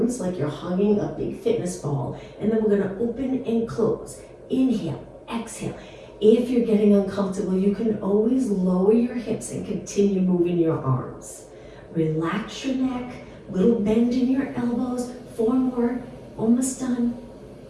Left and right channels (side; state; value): both; identical; correlation 1.00